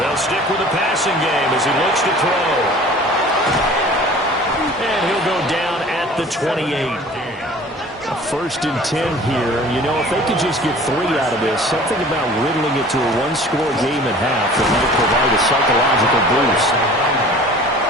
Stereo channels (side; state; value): both; normal; correlation 0.46